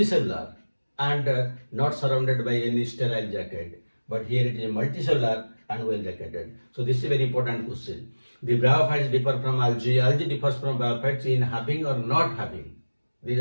and not surrounded by any sterile jacket. But here it is multicellular and well jacketed. So this is a very important question. The bryophytes differ from algae. Algae differs from bryophytes in having or not having. These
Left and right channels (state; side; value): inverted; both; correlation -1.00